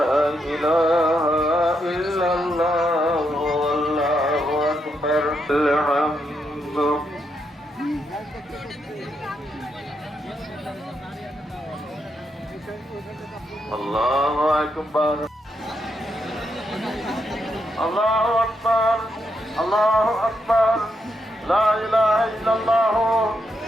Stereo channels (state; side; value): normal; both; correlation 0.81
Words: إله إلا الله والله أكبر الحمد الله أكبر الله أكبر الله أكبر لا إله إلا الله